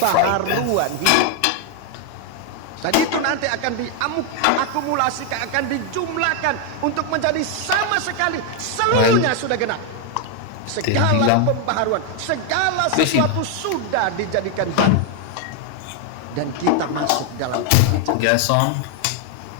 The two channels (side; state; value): both; different; correlation 0.00